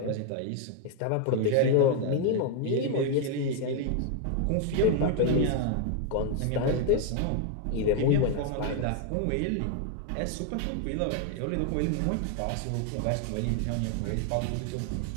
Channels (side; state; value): both; different; correlation 0.01